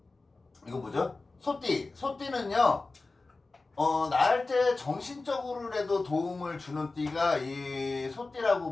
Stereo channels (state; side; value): quieter; right; 3.5 dB